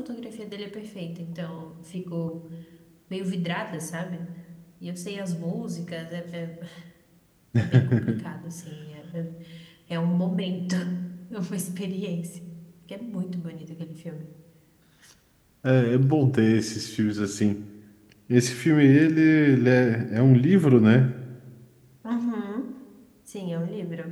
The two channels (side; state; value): both; identical; correlation 1.00